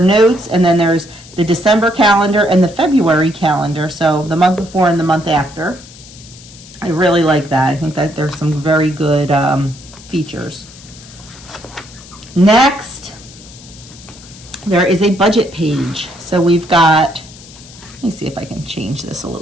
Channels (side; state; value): left; noise; hiss, 20 dB below the sound